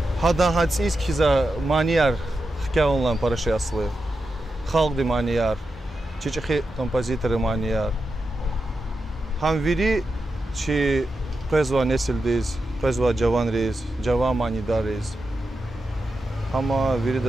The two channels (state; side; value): normal; both; correlation 0.89